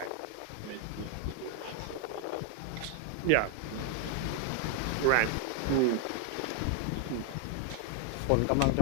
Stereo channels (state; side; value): different; both; correlation 0.00